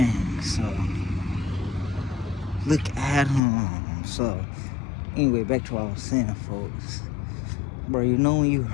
so look at him. So anyway, back to what I was saying, folks. Bro, you know when you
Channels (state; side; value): drops out; right; at 3.4 s